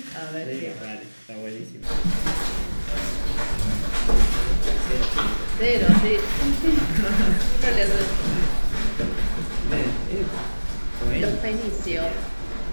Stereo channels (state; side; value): inverted; both; correlation -1.00